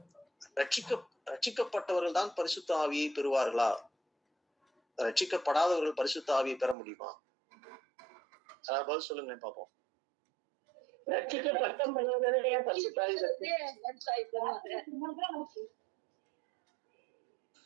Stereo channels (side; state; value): left; drops out; at 6.8 s